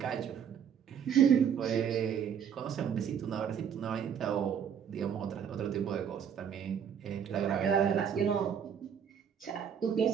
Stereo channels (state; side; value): quieter; left; 8.1 dB